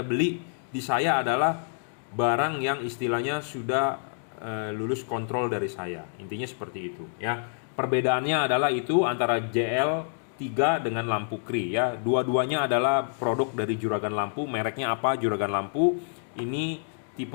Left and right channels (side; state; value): right; silent; digital silence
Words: di saya adalah barang yang istilahnya sudah lulus kontrol dari saya. Intinya seperti itu, ya. Perbedaannya adalah itu antara JL3 dengan lampu Cree, ya. Dua-duanya adalah produk dari Juragan Lampu. Mereknya apa? Juragan Lampu. Ini